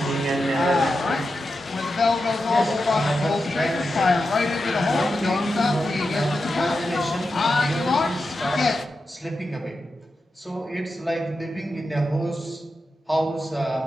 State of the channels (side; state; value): both; normal; correlation 0.89